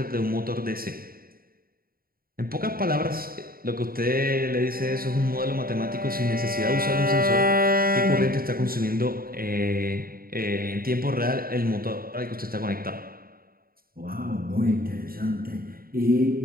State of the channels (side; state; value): left; late; 0.43 ms